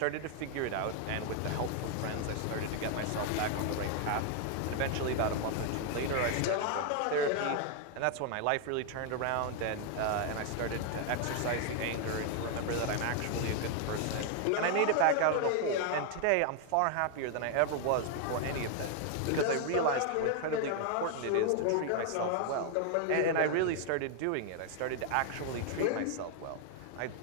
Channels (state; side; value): different; both; correlation 0.00